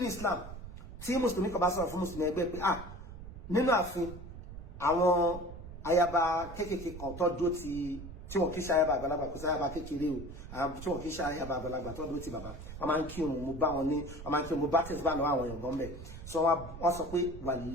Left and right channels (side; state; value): right; noise; rumble, 12 dB below the sound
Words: Islam tí mùsùlùmí kan bá sọ̀rọ̀ fún mùsùlùmí ẹgbẹ́ pé nínú ààfin àwọn ayaba kéékèèké kan tó dó tí wọn kì í ṣe ayaba àgbàlagbà kò sí ayaba kékeré o tí wọn kì í ṣe ayaba àgbàlagbà tó dó ti bàbá wọn máa ń kí òun mo bá wọn ní wọn máa ń kí òun mo bá tẹ̀sí bá lọ́wọ́ àwọn èèyàn gan bẹ́ẹ̀ sọ wọn sọ pé